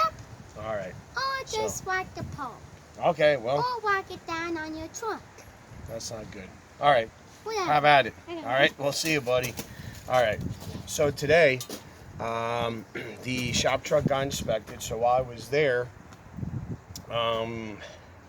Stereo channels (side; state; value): both; identical; correlation 1.00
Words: All right. Or just whack the pole. Okay, well. Or whack it down on your trunk. That's not good. All right. Whatever. Have at it. All right. We'll see you, buddy. All right. So today, the shop truck got inspected. So while I was there, I